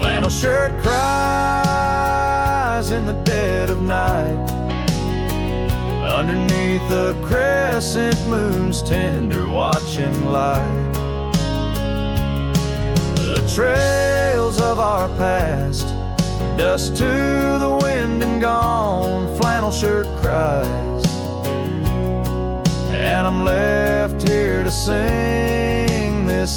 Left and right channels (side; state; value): both; identical; correlation 1.00